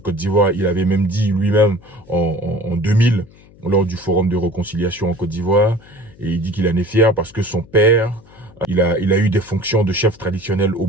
d'Ivoire, il avait même dit lui-même en 2000, lors du forum de réconciliation en Côte d'Ivoire, et il dit qu'il en est fier parce que son père, il a eu des fonctions de chef traditionnel au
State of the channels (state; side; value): noise; left; hum, 25 dB below the sound